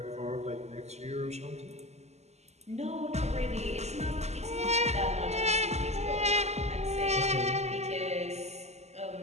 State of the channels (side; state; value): left; late; 0.32 ms